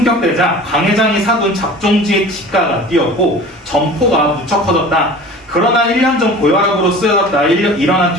강 회장이 사둔 작종지의 지가가 뛰었고 점포가 무척 커졌다. 그러나 1년 전 고혈압으로 쓰여졌다. 일어난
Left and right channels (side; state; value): both; normal; correlation 0.40